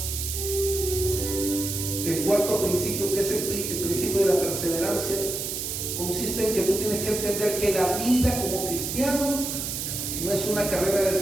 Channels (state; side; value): noise; right; hiss, 4 dB below the sound